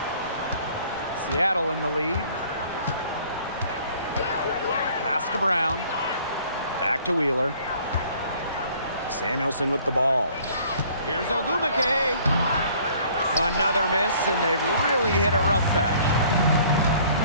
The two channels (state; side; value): inverted; both; correlation -0.56